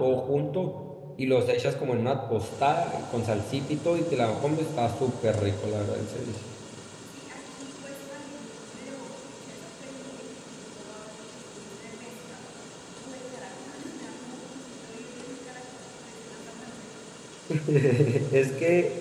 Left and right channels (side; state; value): both; identical; correlation 1.00